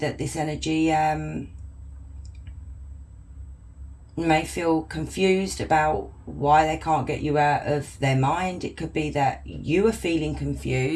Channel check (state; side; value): identical; both; correlation 1.00